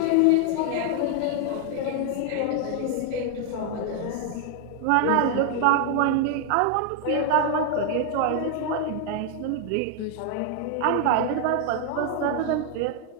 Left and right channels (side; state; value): both; different; correlation 0.00